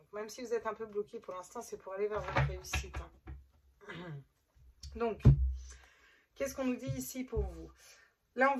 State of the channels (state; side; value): identical; both; correlation 1.00